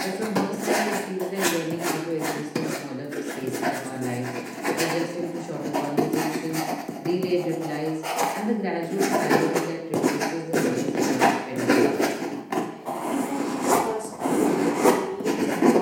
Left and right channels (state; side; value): identical; both; correlation 1.00